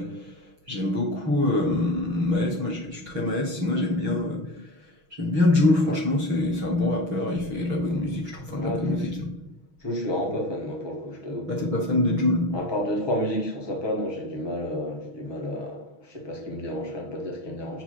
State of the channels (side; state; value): left; late; 6.3 ms